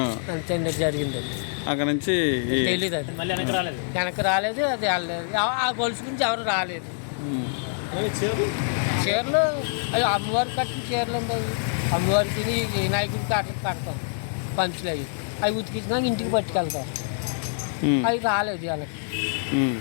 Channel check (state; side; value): silent; right; digital silence